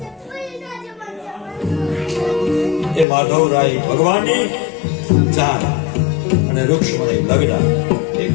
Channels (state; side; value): drops out; right; at 3.1 s